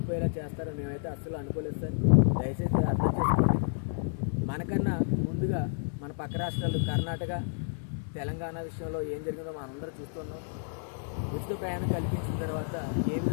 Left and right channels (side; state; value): right; silent; digital silence